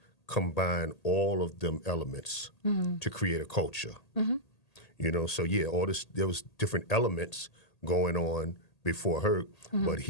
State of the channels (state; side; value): late; right; 1.8 ms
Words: combine all of them elements to create a culture. So there was different elements going on before Herc, but